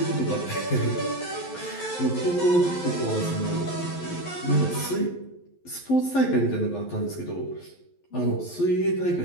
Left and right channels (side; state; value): right; late; 11 ms